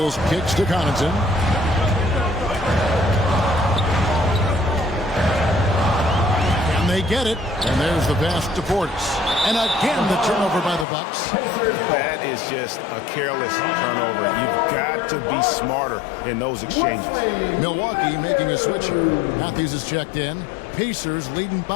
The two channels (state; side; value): drops out; right; at 10.9 s